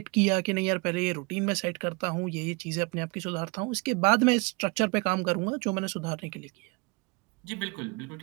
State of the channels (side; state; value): left; quieter; 30.0 dB